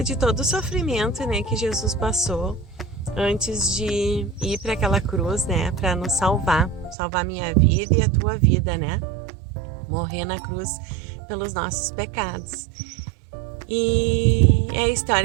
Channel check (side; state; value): left; drops out; at 7.0 s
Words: de todo o sofrimento, que Jesus passou antes de ir para aquela cruz, para nos salvar minha vida e a tua vida, morrer na cruz pelos nossos pecados. E é a